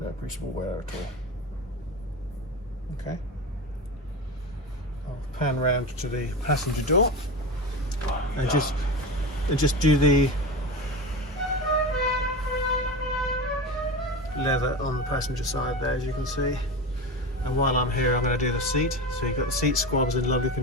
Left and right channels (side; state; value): both; normal; correlation 0.25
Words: appreciable wear at all. Okay. I'll pan round to the passenger door and just do the leather on the passenger side there, as you can see. And while I'm here, I'm going to do the seat. So you've got the seat squabs in lovely